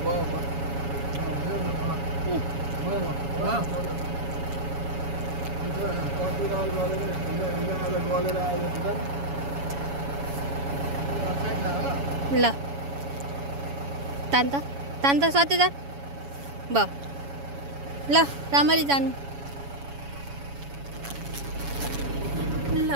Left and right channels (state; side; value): late; left; 7.1 ms